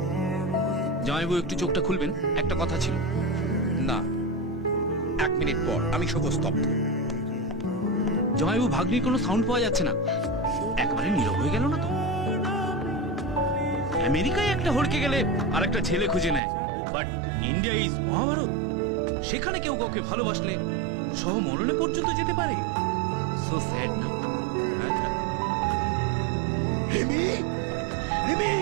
জামাইবাবু একটু চোখটা খুলবেন, একটা কথা ছিল। না, 1 মিনিট পর আমি শোক স্তব্ধ। জামাইবাবু ভাগ্নির কোনো সাউন্ড পাওয়া যাচ্ছে না, একবারে নীরব হয়ে গেল না তো? আমেরিকায় একটা হড়কে গেলে আর একটা ছেলে খুঁজে নেয়, বাট ইন্ডিয়া ইজ মহাভারত। সেখানে কেউ কাউকে ভালোবাসলে সহ মরণে পর্যন্ত যেতে পারে। সো স্যাড না? রিমি, রিমি,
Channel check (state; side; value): drops out; left; at 16.4 s